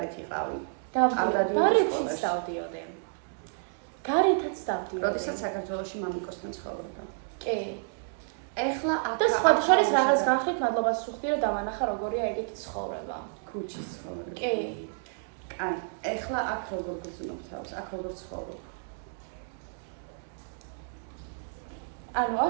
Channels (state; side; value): silent; left; digital silence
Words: იყავი. არ დადიოდი სკოლაში. დავდიოდი. გარეთაც დავდიოდი. როდესაც საქართველოში მამიკოსთან ცხოვრობდა. კი. ეხლა აქ და სხვა შორის რაღაც განხით მადლობას ვუხდი რომ დავანახა როგორია ეგეთი ცხოვრება. ქუჩის ცხოვრება. კი. აი, ეხლა აქ როგორ გრძნობ თავს? აქ როგორ ცხოვრობ?